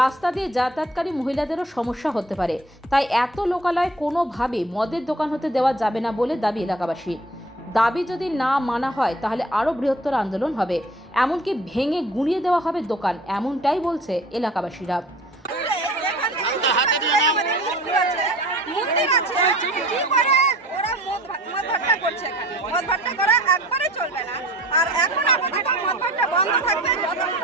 দিয়ে যাতায়াতকারী মহিলাদেরও সমস্যা হতে পারে, তাই এত লোকালয় কোনোভাবে মদের দোকান হতে দেওয়া যাবে না বলে দাবি এলাকাবাসী। দাবি যদি না মানা হয় তাহলে আরও বৃহত্তর আন্দোলন হবে, এমনকি ভেঙে গুঁড়িয়ে দেওয়া হবে দোকান, এমনটাই বলছে এলাকাবাসীরা। আর এখন আপাতত মদ ভাট্টা বন্ধ থাকবে যতক্ষণ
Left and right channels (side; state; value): both; normal; correlation 0.47